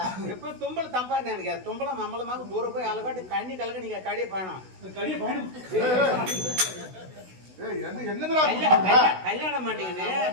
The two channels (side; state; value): left; late; 16 ms